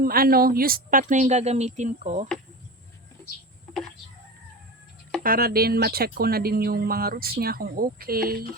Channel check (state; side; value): normal; both; correlation 0.28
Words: used pot na yung gagamitin ko. Para din ma-check ko na din yung mga roots niya kung okay.